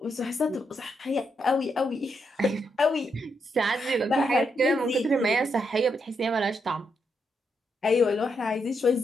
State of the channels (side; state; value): both; normal; correlation 0.80